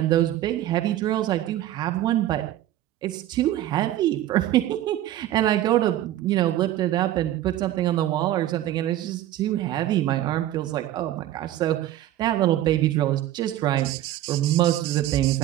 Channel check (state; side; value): quieter; left; 13.4 dB